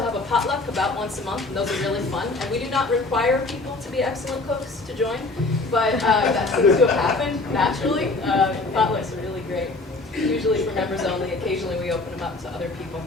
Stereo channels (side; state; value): right; quieter; 3.3 dB